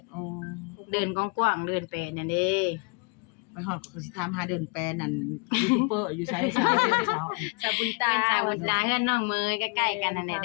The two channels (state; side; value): quieter; right; 33.2 dB